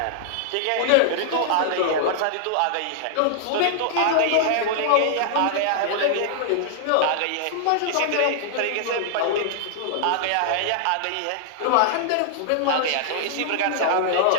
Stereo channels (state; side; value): different; both; correlation -0.01